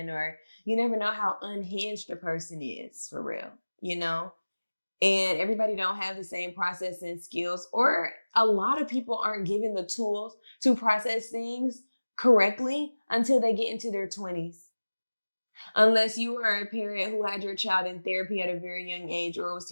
or you never know how unhinged a person is for real, you know? And everybody don't have the same processing skills, or a lot of people aren't given the tools to process things correctly until they get into their 20s. Unless you are a parent who had your child in therapy at a very young age, or was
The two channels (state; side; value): inverted; both; correlation -1.00